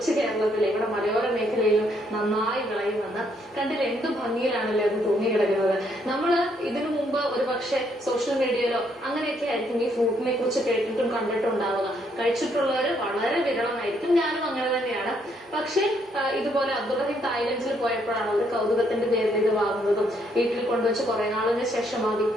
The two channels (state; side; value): normal; both; correlation 0.72